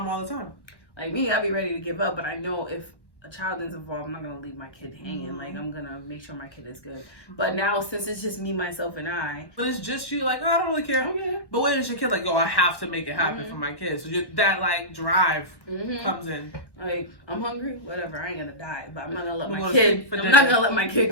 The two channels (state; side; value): late; right; 1.1 ms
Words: all the time. Like me, I'd be ready to give up, but I know if a child is involved, I'm not going to leave my kid hanging. Like, I'm going to make sure my kid is good. But now, since it's just me, myself, and I. When it's just you, like, oh, I don't really care. Okay. But when it's your kid, like, oh, I have to make it happen for my kids. So that, like, drive comes in. Like, I'm hungry, whatever. I ain't going to die. But I'm not going to let my kid, I'm not going to let my kid